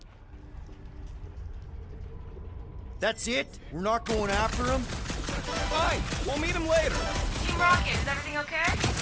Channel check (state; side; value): identical; both; correlation 1.00